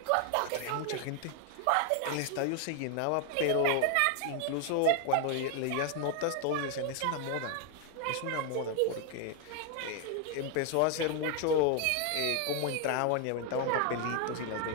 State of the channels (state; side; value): different; both; correlation 0.01